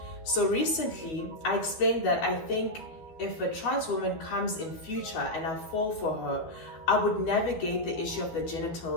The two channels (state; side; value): late; right; 12 ms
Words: So recently, I explained that I think if a trans woman comes in future and I fall for her, I would navigate the issue of the